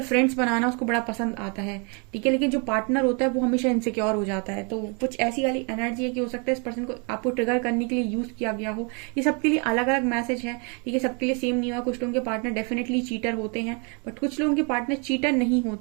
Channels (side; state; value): left; quieter; 35.3 dB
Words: फ्रेंड्स बनाना उसको बड़ा पसंद आता है। ठीक है, लेकिन जो पार्टनर होता है वो हमेशा इनसिक्योर हो जाता है। तो कुछ ऐसी वाली एनर्जी है कि हो सकता है इस पर्सन को आपको ट्रिगर करने के लिए यूज किया गया हो। ये सबके लिए अलग अलग मैसेज है। ठीक है, सबके लिए सेम नहीं हुआ। कुछ लोगों के पार्टनर डेफिनेटली चीटर होते हैं, बट कुछ लोगों के पार्टनर चीटर नहीं